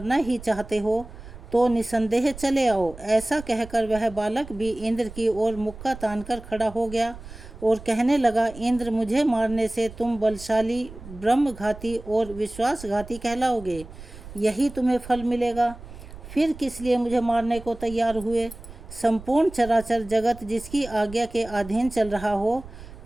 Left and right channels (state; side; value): noise; right; rumble, 15 dB below the sound